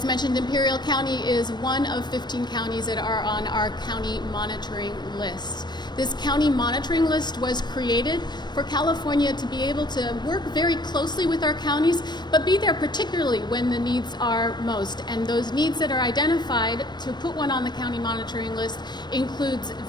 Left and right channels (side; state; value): right; late; 0.21 ms